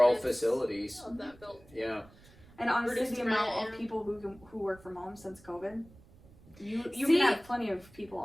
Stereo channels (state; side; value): noise; right; rumble, 24 dB below the sound